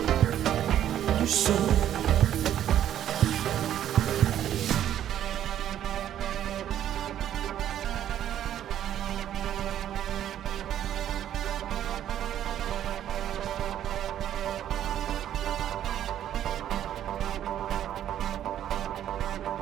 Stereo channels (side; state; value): left; quieter; 11.0 dB